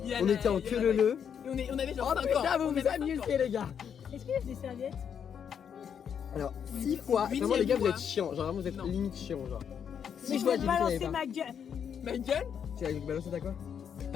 Il y a on la- était en il y a que la- le. Et on avait genre Oh 5 ans. putain, vous On vous avait 5 ans. amusez les gars! Est-ce qu'il y a des serviettes? Alors, 6 fois, vraiment les gars, vous fois. êtes chiants, genre vraiment vous êtes Non. limite chiants, genre. Mais 6 je fois, vais j'ai te dit qu'il y balancer avait pas. ma gueule. Ma gueule? Tu as balancé ta quoi?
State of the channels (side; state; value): right; quieter; 7.9 dB